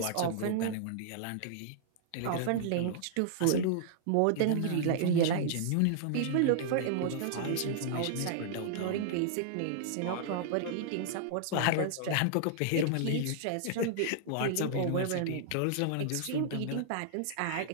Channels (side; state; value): both; different; correlation -0.01